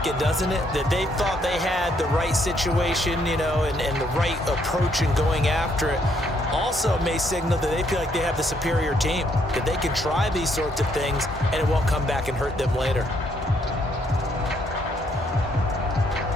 it, doesn't it? That they thought they had the right situation, you know, and the right approach in going after it. Also may signal that they feel like they have the superior team, that they can try these sorts of things and it won't come back and hurt them later.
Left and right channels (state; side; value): normal; both; correlation 0.71